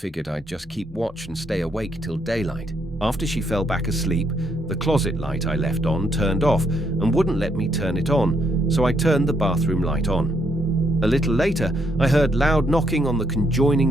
I'd just keep watch and stay awake till daylight. After she fell back asleep, the closet light I left on turned off and wouldn't let me turn it on, so I turned the bathroom light on. A little later, I heard loud knocking on the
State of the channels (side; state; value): both; normal; correlation 0.74